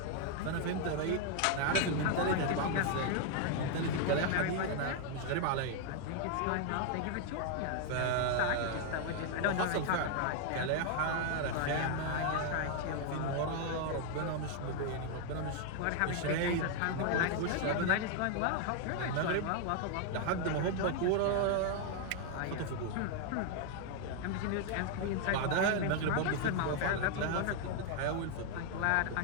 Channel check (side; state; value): both; different; correlation 0.00